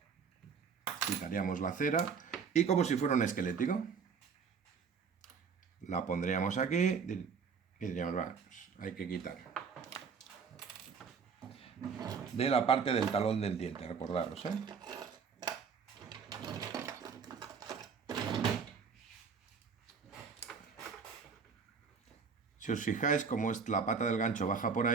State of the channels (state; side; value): quieter; left; 6.0 dB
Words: quitaríamos la cera y como si fuera un esquelético, la pondríamos aquí y diríamos, va, pues hay que quitar de la parte del talón del diente, recordaros, Si os fijáis, como es la pata del gancho baja por